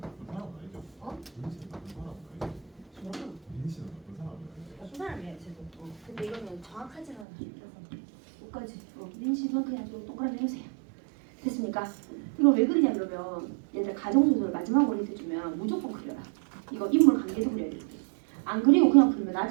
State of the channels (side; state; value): left; drops out; at 7.2 s